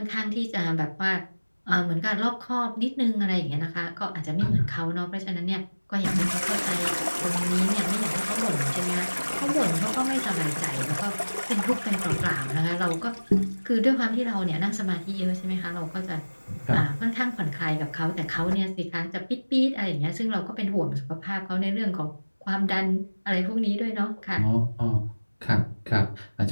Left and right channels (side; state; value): both; inverted; correlation -1.00